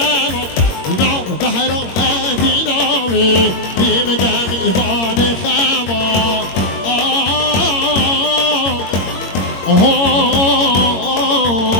نام بحرا دینامی بیم دم ایوان خما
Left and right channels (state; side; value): late; right; 21 ms